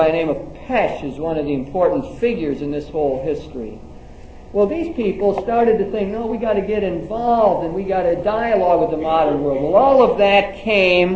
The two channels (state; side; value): identical; both; correlation 1.00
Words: the name of Pesch is one of the important figures in this whole history. Well, these people started to think, no, we got to get involved and we got to dialogue with the modern world. Well, all of that